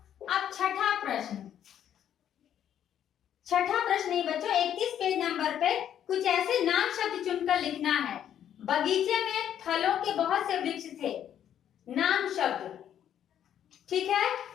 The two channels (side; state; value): right; quieter; 10.0 dB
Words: अब छठा प्रश्न। छठा प्रश्न नहीं बच्चों, 31 पेज नंबर पे कुछ ऐसे नाम शब्द चुनकर लिखना है। बगीचे में फलों के बहुत से वृक्ष थे। नाम शब्द। ठीक है,